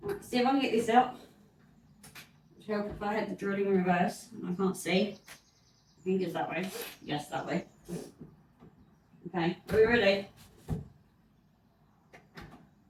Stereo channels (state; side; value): identical; both; correlation 1.00